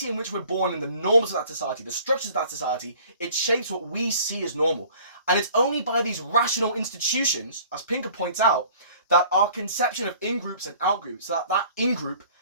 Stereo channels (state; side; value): inverted; both; correlation -0.51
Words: in which we're born and the norms of that society, the structures of that society, it shapes what we see as normal. And it's only by these rational institutions, as Pinker points out, that our conception of in-groups and out-groups, that in-group